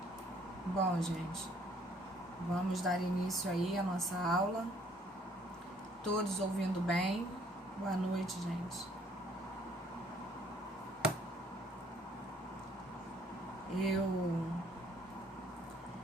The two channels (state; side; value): normal; both; correlation 0.62